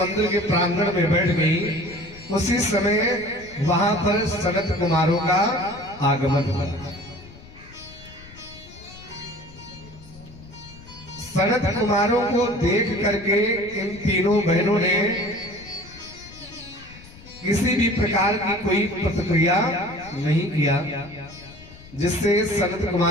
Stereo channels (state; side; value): noise; left; rumble, 20 dB below the sound